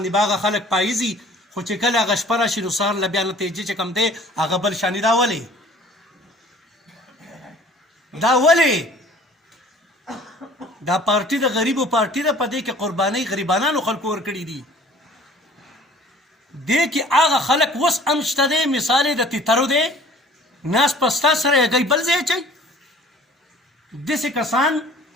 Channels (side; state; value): both; normal; correlation 0.50